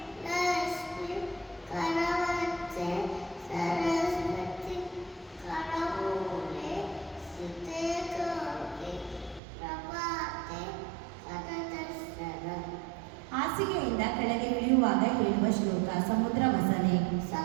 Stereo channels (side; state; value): left; drops out; at 9.4 s